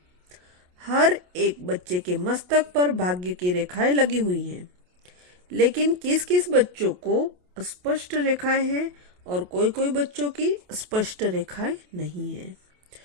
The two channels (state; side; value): late; left; 28 ms